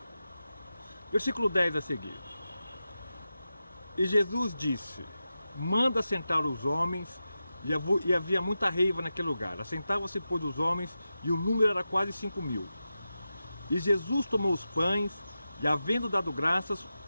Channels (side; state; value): both; inverted; correlation -0.92